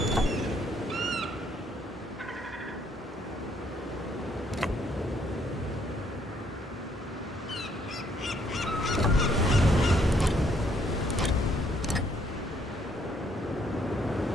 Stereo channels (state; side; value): normal; both; correlation 0.68